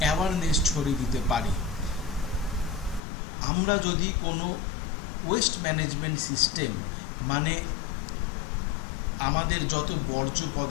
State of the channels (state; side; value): drops out; right; at 3.0 s